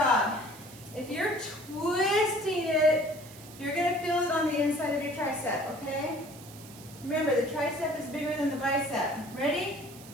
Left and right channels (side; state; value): right; noise; hiss, 18 dB below the sound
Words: If you're twisting it, you're going to feel it on the inside of your tricep, okay? Remember, the tricep is bigger than the bicep. Ready?